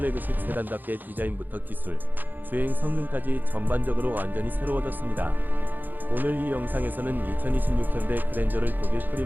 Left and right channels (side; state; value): left; late; 0.087 ms